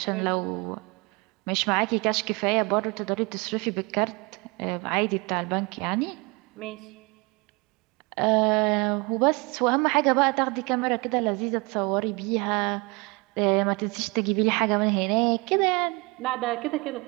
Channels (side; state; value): left; quieter; 27.6 dB